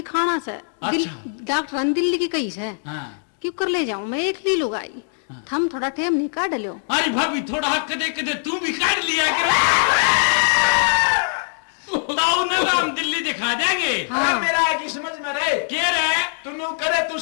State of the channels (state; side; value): silent; right; digital silence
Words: से अच्छा। डॉक्टर दिल्ली की कही से हाँ क्यों कर ले जाऊं मैं एक ली लूंगा थम थोड़ा टेम नहीं काट लो अरे भाभी थोड़ा हक कदे कदे तू भी काट लिया कर ताऊ ने तो हम दिल्ली दिखा देंगे अरे मेरा आगे समझ में रहे क्या रहे तू करे तू